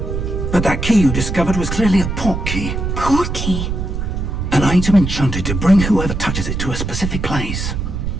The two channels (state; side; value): noise; right; rumble, 3 dB below the sound